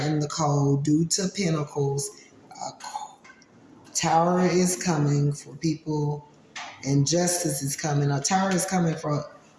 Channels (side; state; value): both; identical; correlation 1.00